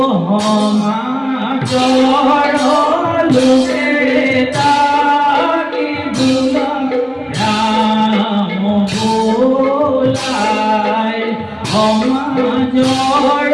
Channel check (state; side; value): identical; both; correlation 1.00